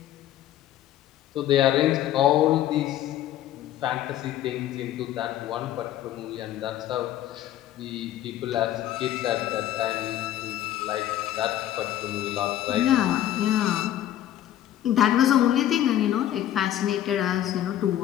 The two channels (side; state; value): right; quieter; 12.3 dB